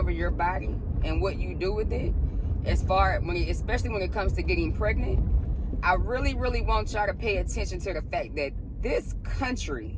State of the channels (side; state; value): both; identical; correlation 1.00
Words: your body and what you do with it. Especially when it comes to getting pregnant, I really, really want y'all to pay attention to the fact that this